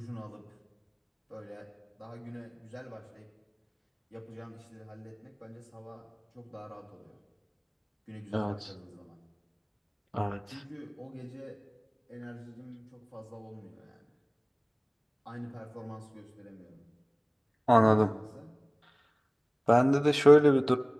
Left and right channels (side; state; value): both; identical; correlation 1.00